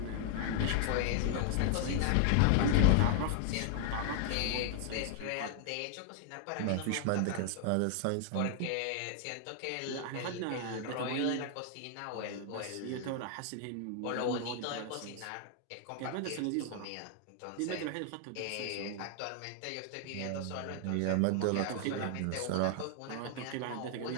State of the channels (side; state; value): both; different; correlation 0.00